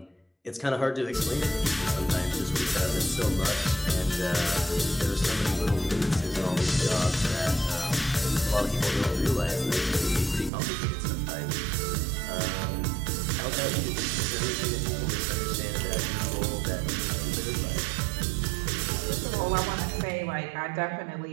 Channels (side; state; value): left; drops out; at 10.5 s